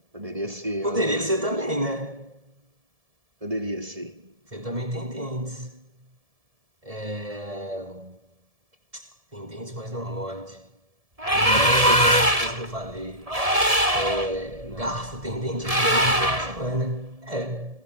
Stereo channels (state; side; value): late; left; 1.7 ms